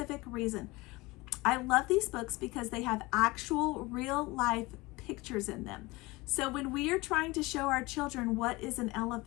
reason. I love these books because they have actual real life pictures in them. So when we are trying to show our children what is an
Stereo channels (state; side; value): quieter; right; 22.2 dB